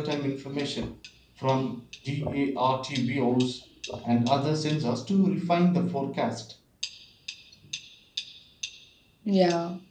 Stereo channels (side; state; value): both; identical; correlation 1.00